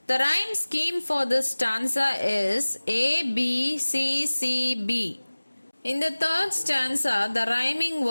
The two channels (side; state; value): both; inverted; correlation -1.00